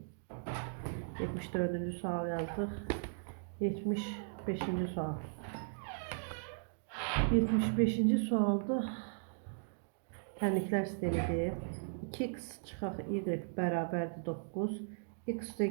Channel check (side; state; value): left; silent; digital silence